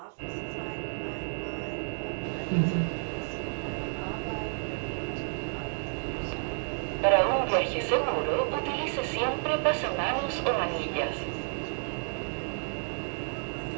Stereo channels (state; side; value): silent; left; digital silence